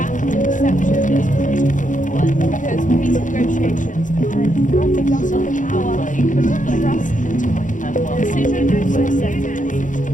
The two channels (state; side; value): late; right; 0.37 ms